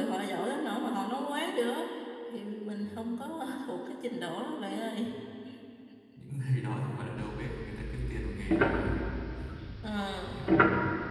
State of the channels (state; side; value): identical; both; correlation 1.00